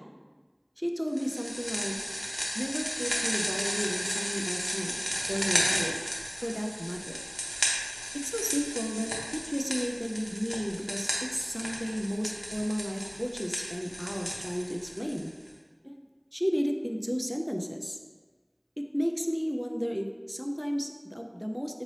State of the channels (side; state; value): both; identical; correlation 1.00